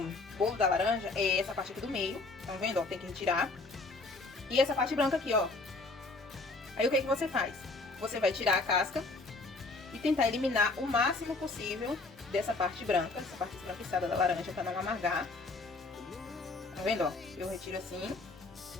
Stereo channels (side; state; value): right; quieter; 3.4 dB